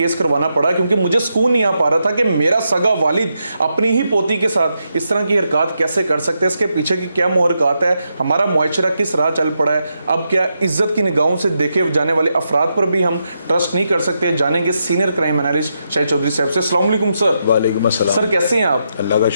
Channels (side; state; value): both; inverted; correlation -0.83